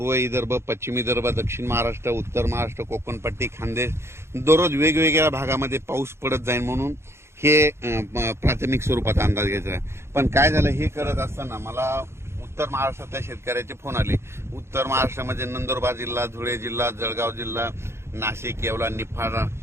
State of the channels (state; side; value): late; left; 0.13 ms